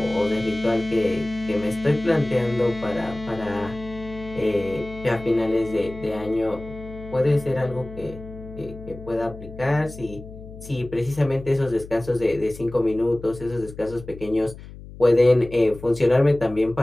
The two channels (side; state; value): left; noise; hum, 15 dB below the sound